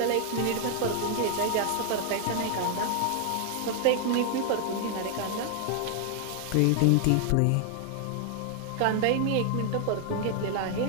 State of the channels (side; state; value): both; different; correlation 0.00